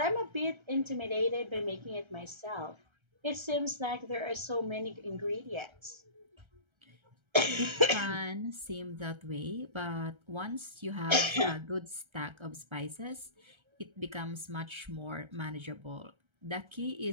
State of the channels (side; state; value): left; late; 1.3 ms